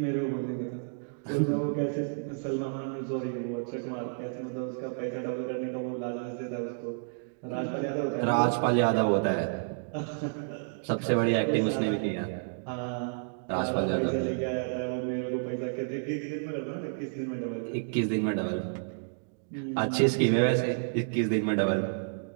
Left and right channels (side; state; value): left; silent; digital silence